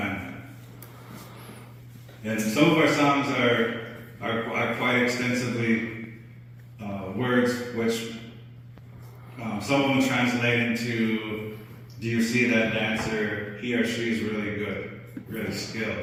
And some of our songs are quite extensively words which some of them translate into, do you see that dancer? He or she is really good, really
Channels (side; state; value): both; identical; correlation 1.00